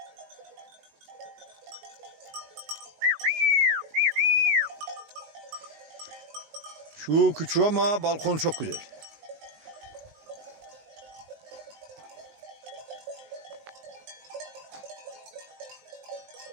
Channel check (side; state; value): left; late; 19 ms